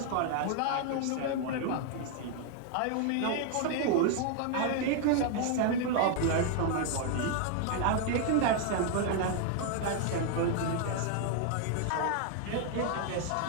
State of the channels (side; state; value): both; different; correlation 0.00